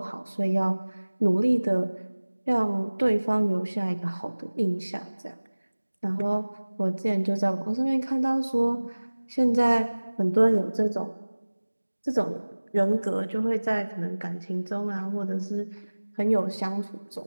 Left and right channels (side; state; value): both; inverted; correlation -1.00